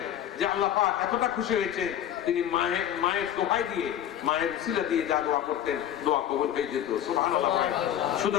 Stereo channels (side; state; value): right; quieter; 10.8 dB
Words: যে আল্লাহ পাক এতটা খুশি হয়েছে, তিনি মায়ের দোহাই দিয়ে, মায়ের উসিলা দিয়ে যা দোয়া করতেন, দোয়া কবুল হয়ে যেত। সুবহানাল্লাহ বলেন।